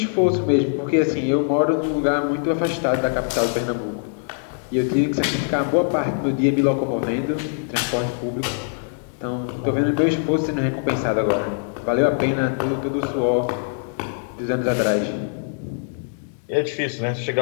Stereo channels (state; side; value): silent; right; digital silence